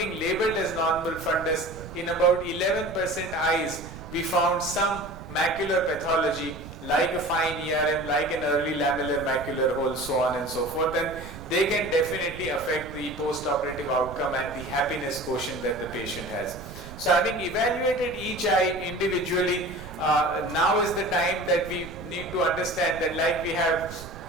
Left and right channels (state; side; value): noise; right; rumble, 14 dB below the sound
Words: labeled as normal fundus, in about 11% eyes we found some macular pathology like a fine ERM, like an early lamellar macular hole, so on and so forth, and they can definitely affect the post-operative outcome and the happiness quotient that the patient has. So having evaluated each eye individually, now is the time that we need to understand that like we have